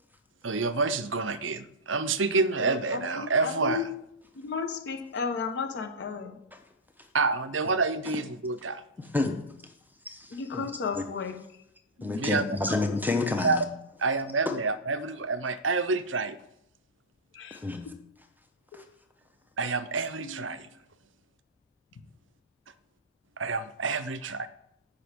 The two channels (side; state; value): both; normal; correlation -0.09